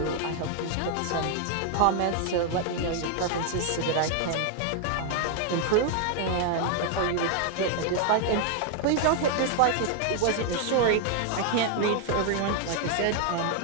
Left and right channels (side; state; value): both; different; correlation 0.00